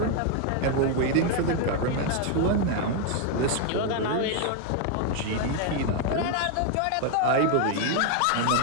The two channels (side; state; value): both; different; correlation 0.00